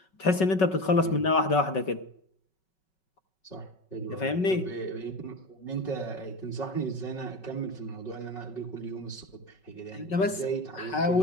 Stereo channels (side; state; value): right; late; 5.3 ms